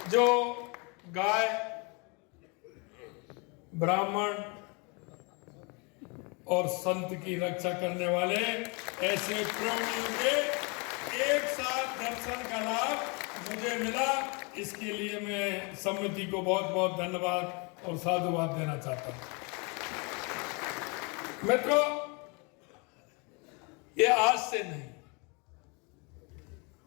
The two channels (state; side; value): quieter; right; 31.9 dB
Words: जो गाय, ब्राह्मण और संत की रक्षा करने वाले ऐसे प्राणियों के एक साथ दर्शन का लाभ मुझे मिला, इसके लिए मैं समिति को बहुत बहुत धन्यवाद और साधुवाद देना चाहता हूं। मित्रों, ये आज से नहीं,